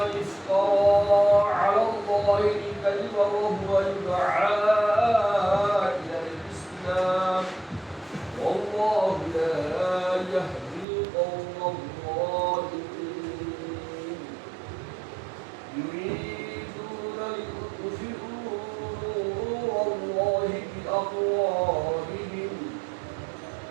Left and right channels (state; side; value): drops out; left; at 10.9 s